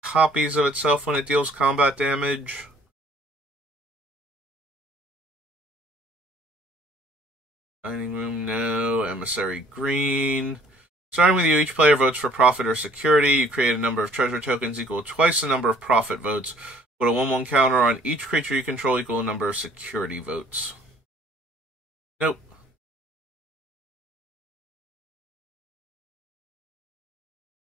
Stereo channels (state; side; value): normal; both; correlation 0.58